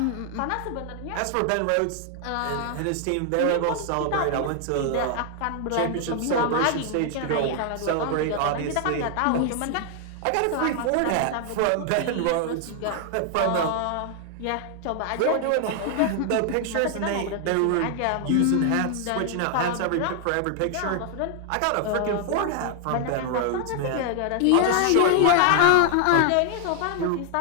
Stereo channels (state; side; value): different; both; correlation 0.00